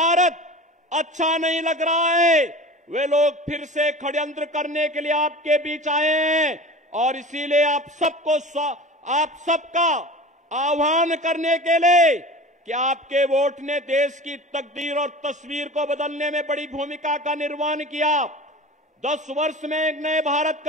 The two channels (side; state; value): both; normal; correlation 0.37